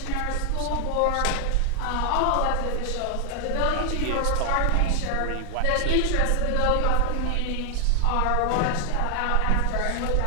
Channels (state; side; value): different; both; correlation 0.00